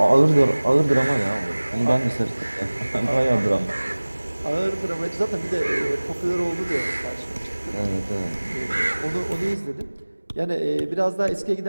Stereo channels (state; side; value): inverted; both; correlation -1.00